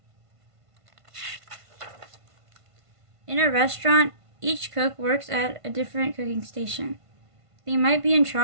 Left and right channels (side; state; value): left; late; 1.5 ms